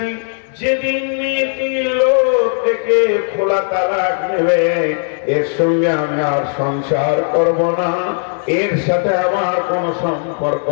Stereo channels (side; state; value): right; silent; digital silence